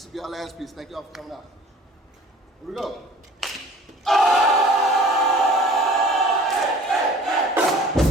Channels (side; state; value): both; normal; correlation 0.48